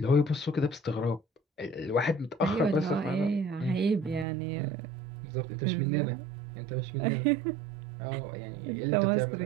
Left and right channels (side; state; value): left; drops out; at 4.2 s